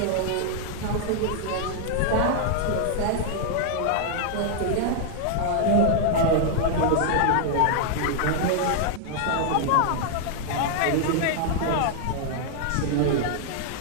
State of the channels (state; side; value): different; both; correlation 0.00